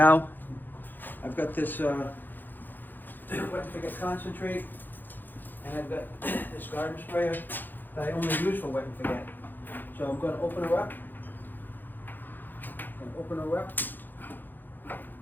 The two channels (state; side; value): late; right; 0.089 ms